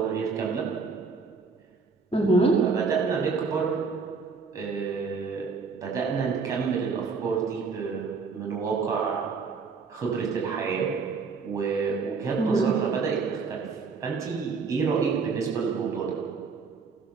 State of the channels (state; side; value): quieter; left; 4.8 dB